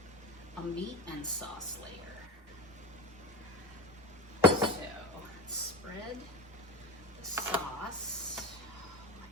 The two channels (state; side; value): normal; both; correlation 0.28